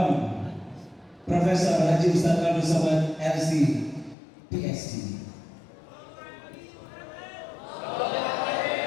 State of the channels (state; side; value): drops out; right; at 4.2 s